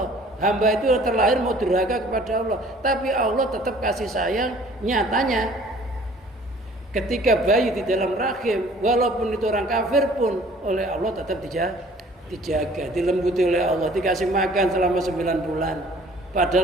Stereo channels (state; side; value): normal; both; correlation 0.53